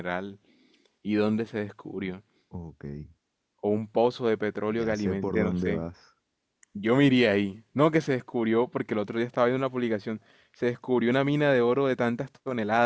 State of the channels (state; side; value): identical; both; correlation 1.00